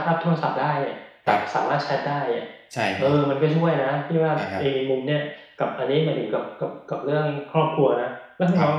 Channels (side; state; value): both; identical; correlation 1.00